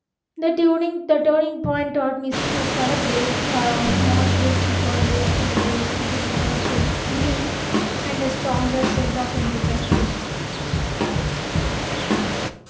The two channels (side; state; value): both; identical; correlation 1.00